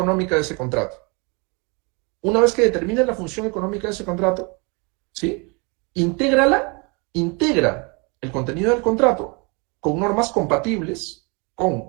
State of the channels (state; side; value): quieter; left; 31.2 dB